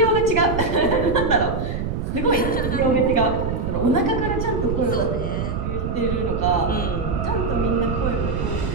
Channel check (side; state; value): right; noise; rumble, 3 dB below the sound